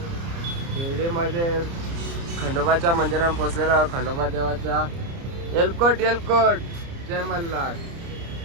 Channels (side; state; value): left; late; 29 ms